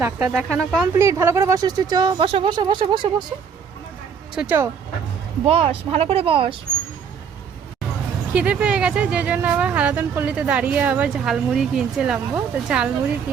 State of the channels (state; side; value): quieter; left; 6.7 dB